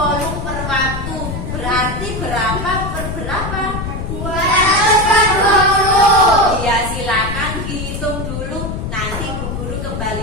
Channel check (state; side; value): noise; left; rumble, 5 dB below the sound